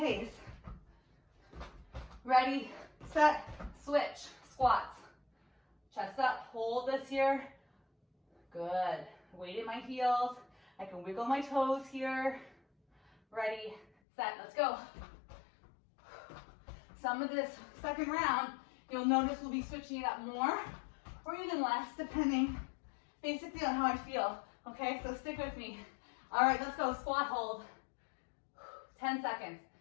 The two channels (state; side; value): drops out; right; at 13.9 s